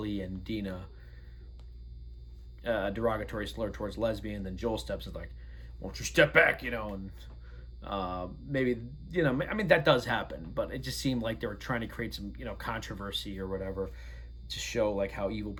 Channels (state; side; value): identical; both; correlation 1.00